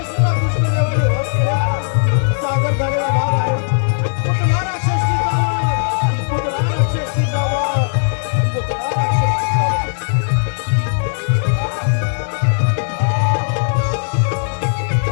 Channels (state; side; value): silent; right; digital silence